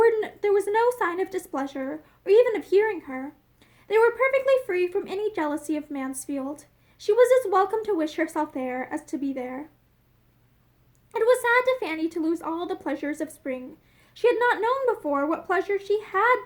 no sign of displeasure, or even of hearing her. They were perfectly free from any jealousy of Mansfield. She was as welcome to wish herself there as to be there. It was sad to Fanny to lose all the pleasures of spring. She had not known before what pleasure she had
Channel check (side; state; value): both; identical; correlation 1.00